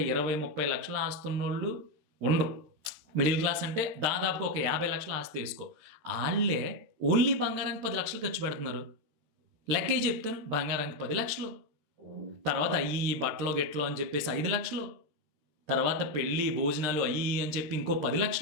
20-30 లక్షల ఆస్తున్నోళ్ళు ఉండరు. మిడిల్ క్లాస్ అంటే దాదాపుగా ఒక 50 లక్షల ఆస్తి వేసుకో. వాళ్ళే ఓన్లీ బంగారానికి 10 లక్షలు ఖర్చు పెడుతున్నారు. లెక్కే చెప్తాను, బంగారానికి 10 లక్షలు, తర్వాత అయ్యి బట్టలో గెట్లో అని చెప్పేసి 5 లక్షలు, తర్వాత పెళ్ళి భోజనాలు అయ్యి అని చెప్పి ఇంకో 10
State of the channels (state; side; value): late; left; 13 ms